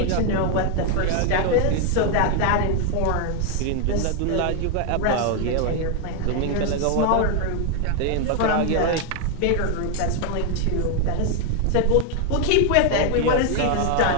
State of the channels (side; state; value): both; different; correlation 0.00